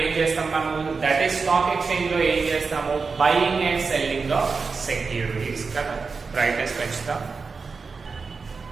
చేస్తాం మనము, that is stock exchange లో ఏం చేస్తాము, buying and selling of securities కదా, brightness పెంచుతాం.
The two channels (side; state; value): left; quieter; 4.7 dB